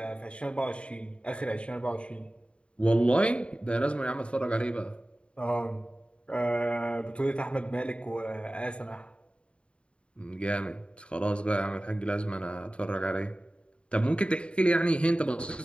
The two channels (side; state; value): right; late; 0.057 ms